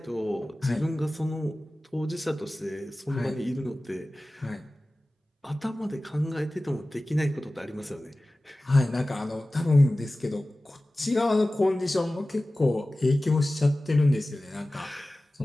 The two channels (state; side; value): normal; both; correlation 0.97